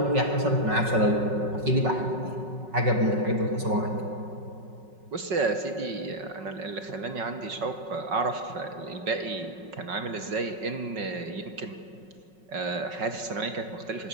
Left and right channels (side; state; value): left; late; 5.4 ms